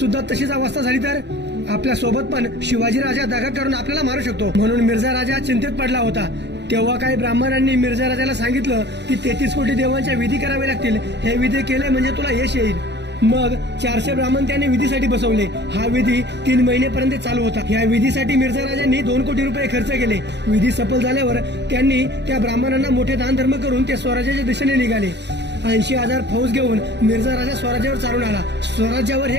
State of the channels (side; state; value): left; late; 0.50 ms